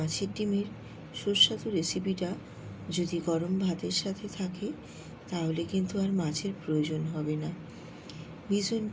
ডিমের সুস্বাদু রেসিপিটা যদি গরম ভাতের সাথে থাকে তাহলে কিন্তু আর মাছের প্রয়োজন হবে না। ভীষণ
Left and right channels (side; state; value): both; identical; correlation 1.00